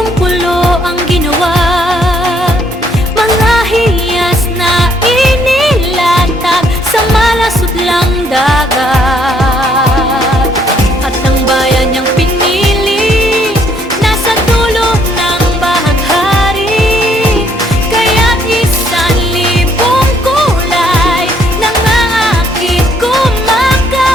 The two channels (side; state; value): both; normal; correlation 0.68